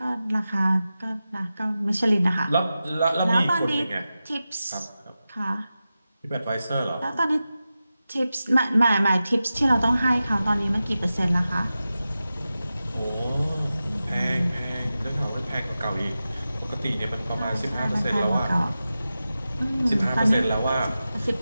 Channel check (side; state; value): both; inverted; correlation -0.93